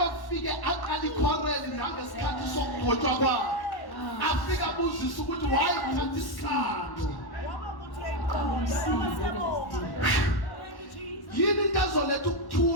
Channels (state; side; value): late; right; 1.1 ms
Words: aqala ikhoreli nangesikhathi sokugqotshwa kwakhe. Afika abuzisa ukuthi wayithatha isikhathi. Yini into ezoletha